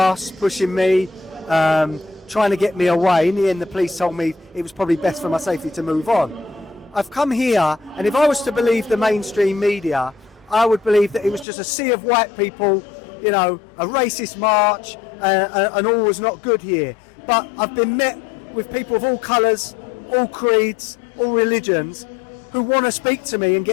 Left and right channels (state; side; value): drops out; right; at 11.5 s